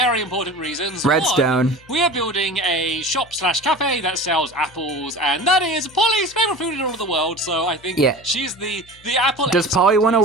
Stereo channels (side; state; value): left; noise; hum, 26 dB below the sound